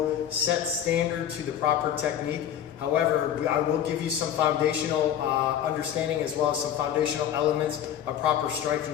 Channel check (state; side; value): quieter; right; 10.0 dB